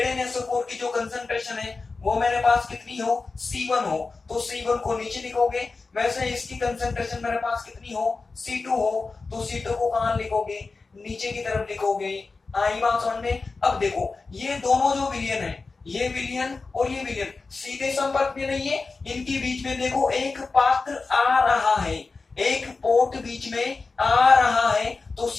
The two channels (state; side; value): quieter; right; 4.0 dB